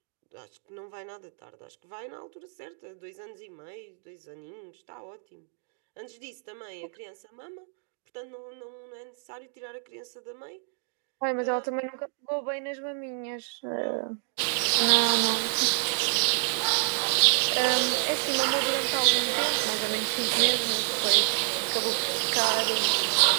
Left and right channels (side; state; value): left; silent; digital silence